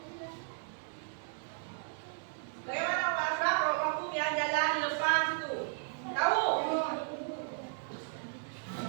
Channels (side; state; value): left; silent; digital silence